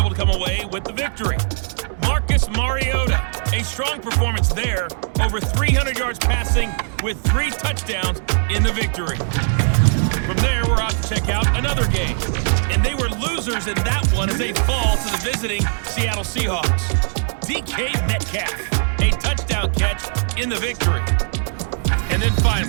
to come away with the victory. Marcus Mariota, a strong performance there, over 300 yards passing with 3 touchdowns in the victory. From there, we're off to check out another game, and they were losers in that one as they fall to the visiting Seattle Seahawks. DK Metcalf, a touchdown catch in the victory. And then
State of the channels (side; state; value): left; silent; 66 dB below the other